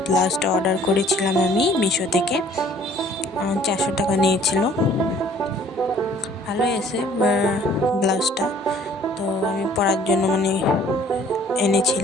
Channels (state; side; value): normal; both; correlation 0.56